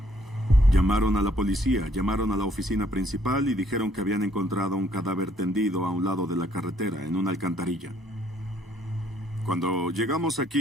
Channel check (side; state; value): both; normal; correlation 0.65